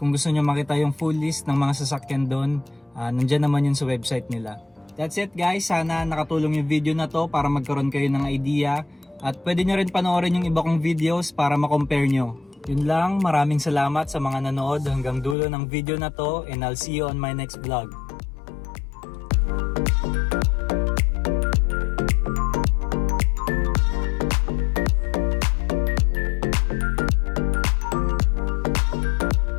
gusto nyo makita yung full list ng mga sasakyan doon, nandyan naman yun sa website nila. That's it guys, sana nakatulong yung video na to para magkaroon kayo ng idea at pwede nyo rin panoorin yung iba kong videos para makompare nyo. Yun lang, maraming salamat sa mga nanood hanggang dulo ng video na to and I'll see you on my next vlog.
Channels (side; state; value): right; drops out; at 15.4 s